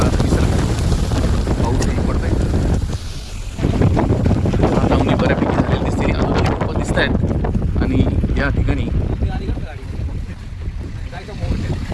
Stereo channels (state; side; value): identical; both; correlation 1.00